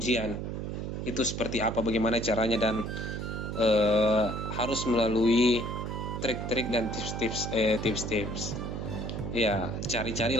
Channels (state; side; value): noise; right; hum, 4 dB below the sound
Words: itu seperti apa, bagaimana caranya, dan harus melalui trik-trik dan tips-tips. Ya